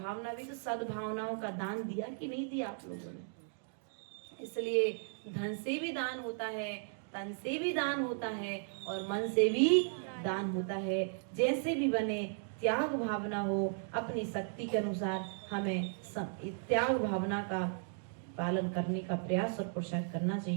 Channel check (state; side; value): silent; left; digital silence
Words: भी तो सद्भावनाओं का दान दिया कि नहीं दिया आप लोगों ने? इसलिए धन से भी दान होता है, तन से भी दान होता है, और मन से भी दान होता है। जैसे भी बने त्याग भावना हो, अपनी शक्ति के अनुसार हमें त्याग भावना का पालन करने का प्रयास और पुरुषार्थ करना